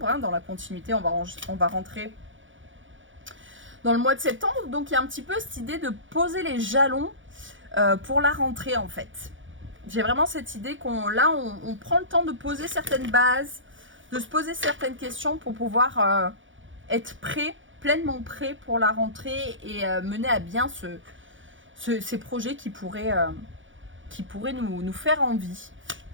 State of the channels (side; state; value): left; late; 0.56 ms